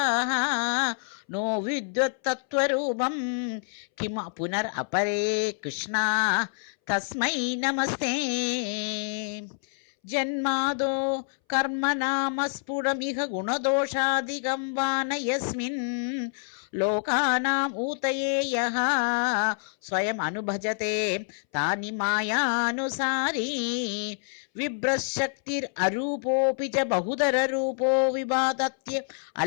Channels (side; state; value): right; silent; 60 dB below the other